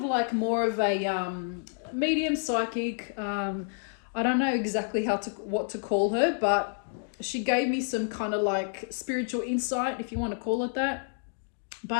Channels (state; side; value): silent; right; digital silence